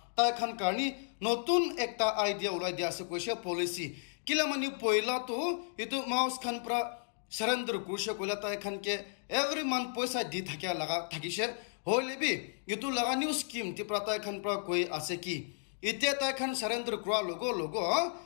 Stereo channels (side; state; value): right; silent; digital silence